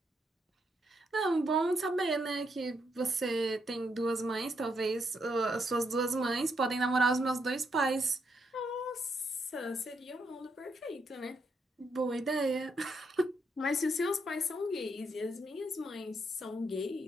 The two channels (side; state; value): both; normal; correlation 0.78